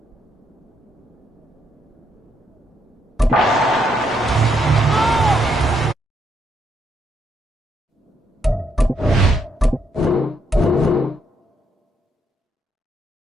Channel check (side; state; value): both; normal; correlation 0.76